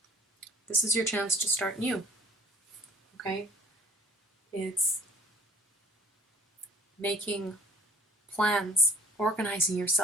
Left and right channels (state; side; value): normal; both; correlation 0.53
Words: This is your chance to start new. Okay? It's making plans, organizing